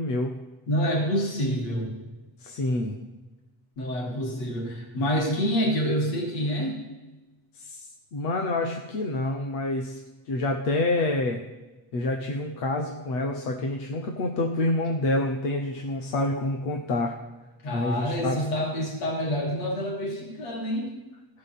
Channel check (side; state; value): right; late; 8.1 ms